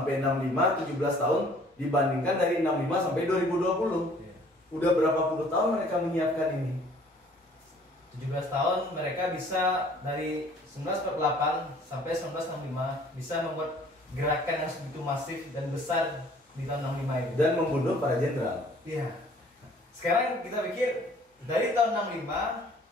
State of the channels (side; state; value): both; normal; correlation 0.55